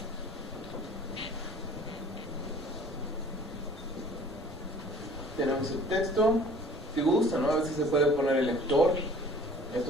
tenemos el texto. Si gusta, ¿no? A veces se puede poner el lector. Esto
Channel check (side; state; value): both; normal; correlation 0.50